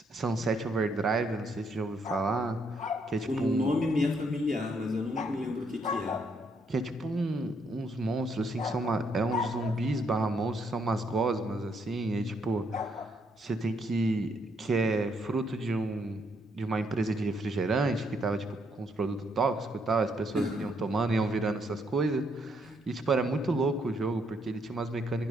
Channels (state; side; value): normal; both; correlation 0.73